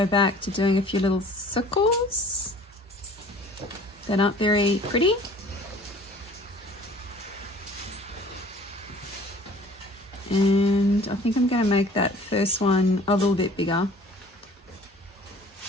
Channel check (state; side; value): normal; both; correlation 0.49